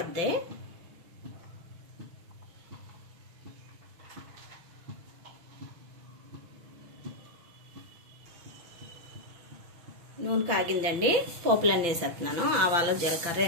నూనె కాగిందండి, పోపులన్నీ వేసేస్తున్నాను। ఆవాలు, జీలకర్ర,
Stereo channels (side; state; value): left; late; 5.9 ms